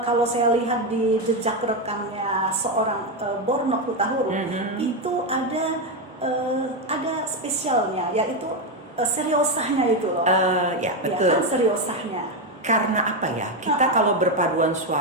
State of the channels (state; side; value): normal; both; correlation 0.08